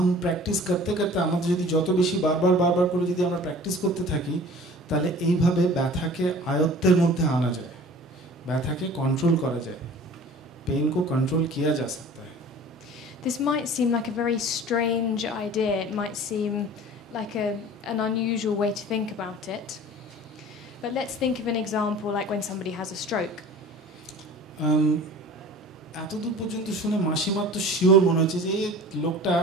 প্র্যাকটিস করতে করতে আমাদের যদি যত বেশি বারবার করে যদি আমরা প্র্যাকটিস করতে থাকি তাহলে এইভাবে ব্যথাকে আয়ত্তের মধ্যে আনা যায়, ব্যথাকে কন্ট্রোল করা যায়, पेन को कंट्रोल किया जा सकता है. This might seem like a very strange idea. It might seem like an unusual way to think about it. But let's think of an example like when somebody has a stroke. এতদূর পর্যন্ত শুনে মাসিমার তো sure মনে হচ্ছে যে এই লোকটা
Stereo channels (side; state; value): both; normal; correlation 0.43